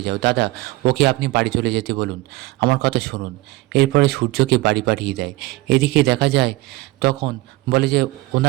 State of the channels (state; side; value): quieter; left; 19.8 dB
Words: যাও। দাদা, ওকে আপনি বাড়ি চলে যেতে বলুন, আমার কথা শুনুন। এরপরে সূর্যকে বাড়ি পাঠিয়ে দেয়। এদিকে দেখা যায় তখন বলে যে